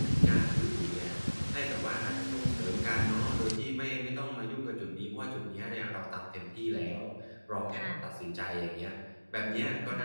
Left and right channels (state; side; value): inverted; both; correlation -1.00